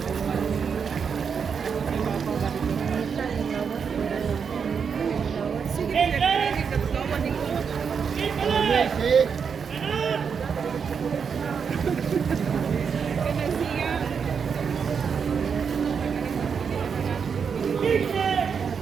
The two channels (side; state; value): left; quieter; 6.4 dB